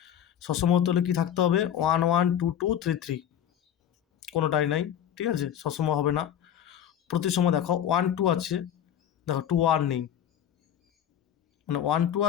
সসম হতে হলে কি থাকতে হবে? 1 1 2 2 3 3, কোনোটাই নাই, ঠিক আছে, সসম হবে না। প্রতিসম দেখো 1 2 আছে, দেখো 2 1 নেই, মানে 1 2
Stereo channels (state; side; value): quieter; right; 9.8 dB